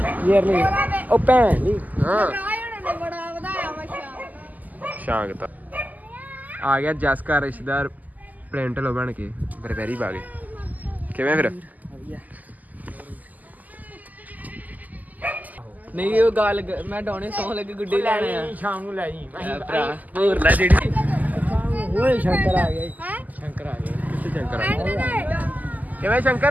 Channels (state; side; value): late; left; 0.081 ms